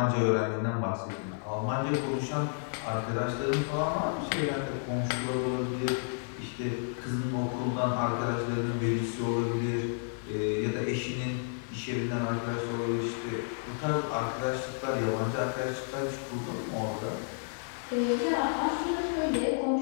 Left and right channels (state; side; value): silent; right; digital silence